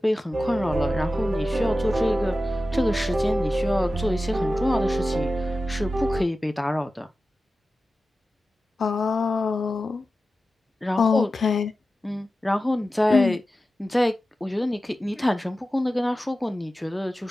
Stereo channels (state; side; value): normal; both; correlation 0.93